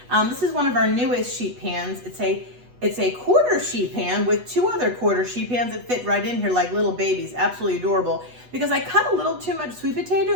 This is one of our newest sheet pans. It's a quarter sheet pan with two other quarter sheet pans that fit right in here like little babies. Absolutely adorable. Because I cut a little too much sweet potato,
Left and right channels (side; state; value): left; late; 8.2 ms